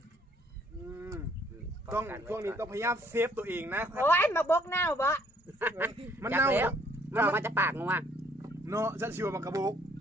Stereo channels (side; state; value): both; normal; correlation 0.64